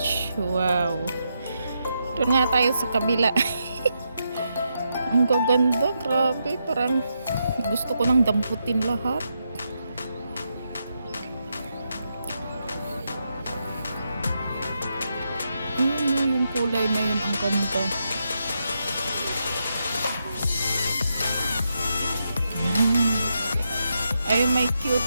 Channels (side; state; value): both; inverted; correlation -0.83